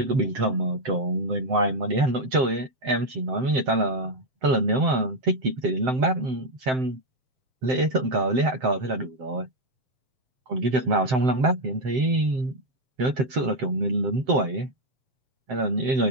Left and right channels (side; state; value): left; late; 7.8 ms